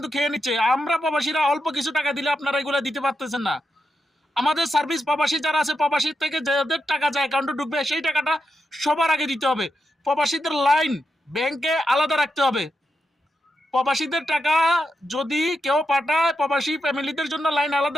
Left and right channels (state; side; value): normal; both; correlation 0.85